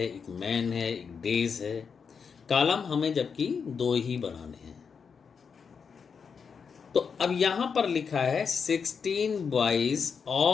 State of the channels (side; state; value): right; quieter; 6.1 dB